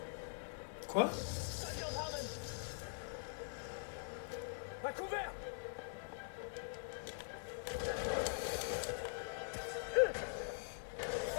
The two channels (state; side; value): silent; right; digital silence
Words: Quoi? À couvert!